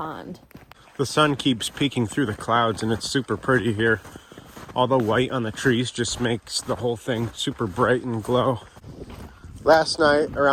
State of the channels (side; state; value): both; identical; correlation 1.00